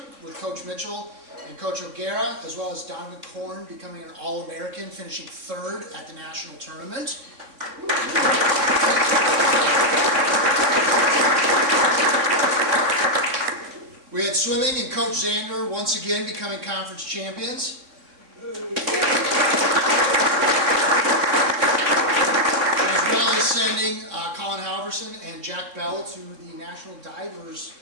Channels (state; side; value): late; left; 3.6 ms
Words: with Coach Mitchell and Coach Decorah, as well as Donovan Korn becoming an All-American, finishing 3rd at the national tournament. We had swimming and Coach Zander once again becoming conference champions. As well as sending Colin Halverson and Jack Bell to the National Divers